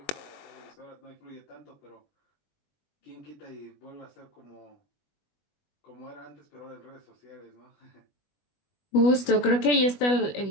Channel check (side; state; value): right; late; 20 ms